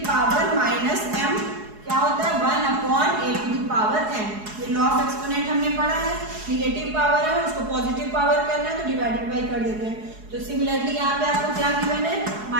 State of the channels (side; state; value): left; late; 4.7 ms